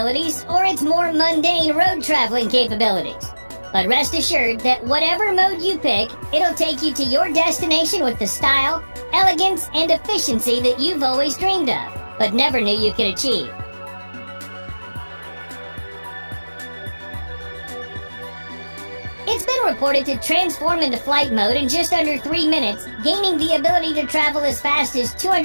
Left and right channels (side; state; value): both; inverted; correlation -1.00